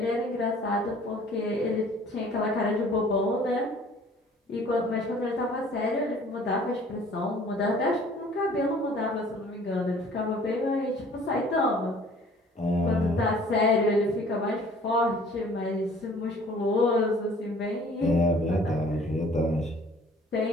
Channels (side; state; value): both; normal; correlation 0.53